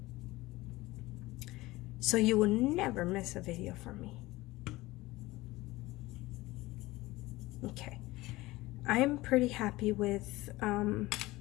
So you will never miss a video from me. Okay. I'm pretty happy with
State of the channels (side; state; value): right; quieter; 19.4 dB